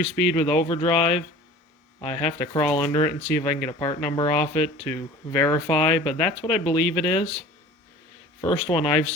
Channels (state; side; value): normal; both; correlation 0.43